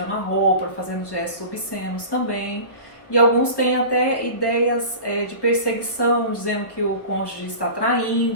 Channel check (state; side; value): late; right; 1.1 ms